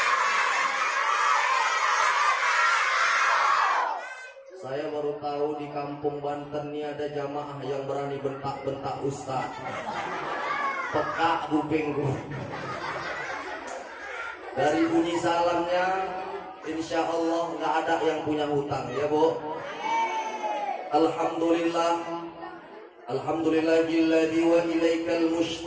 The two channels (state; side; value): identical; both; correlation 1.00